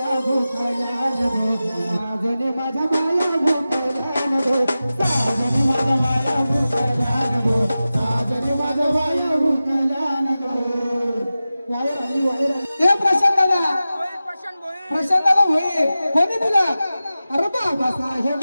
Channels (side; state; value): both; inverted; correlation -0.95